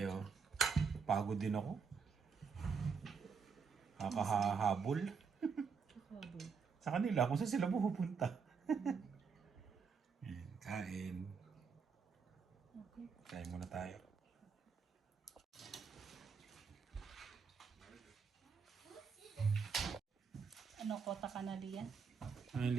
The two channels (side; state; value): left; quieter; 5.7 dB